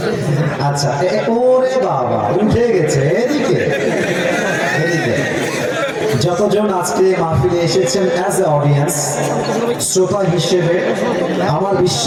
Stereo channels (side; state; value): both; identical; correlation 1.00